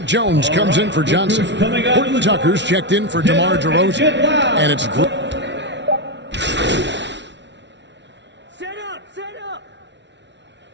Jones comes in for Johnson. Horton Tucker's checked in for DeMar DeRozan. And it's Set up!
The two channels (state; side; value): late; left; 0.51 ms